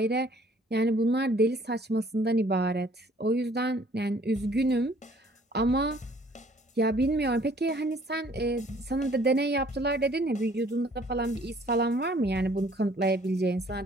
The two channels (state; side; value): normal; both; correlation 0.58